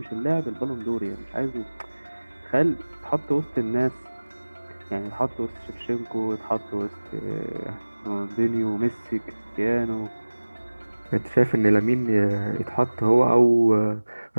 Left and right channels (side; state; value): both; inverted; correlation -1.00